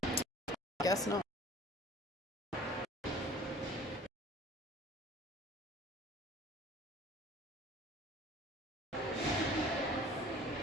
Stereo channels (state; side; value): normal; both; correlation 0.48